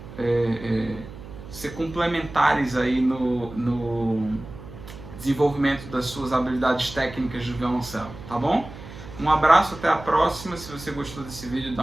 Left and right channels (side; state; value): right; noise; hum, 15 dB below the sound